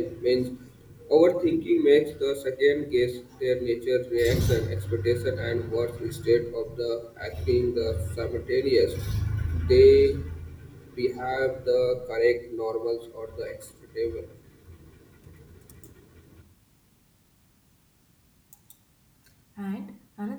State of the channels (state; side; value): identical; both; correlation 1.00